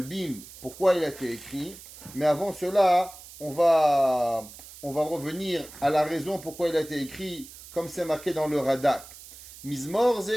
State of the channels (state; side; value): noise; right; hiss, 17 dB below the sound